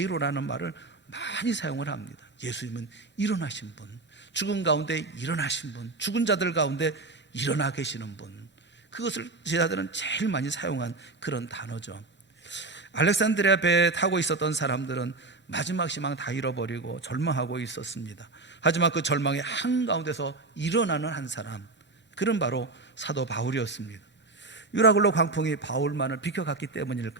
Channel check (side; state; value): left; quieter; 3.4 dB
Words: 말을 많이 사용을 합니다. 예수님은 일어나신 분, 죽은 가운데 일어나신 분, 죽은 자들 가운데 일어나 계시는 분, 그것을 제자들은 제일 많이 사용한 그런 단어죠. 알렉산드리아 배에 타고 있었던 사람들은 마지막 희망 다 잃어버리고 절망하고 있었습니다. 하지만 그 절망의 한가운데서 일어나는 한 사람, 그런 바로 사도 바울이었습니다. 유라굴로 광풍이 바울만을 비켜갔기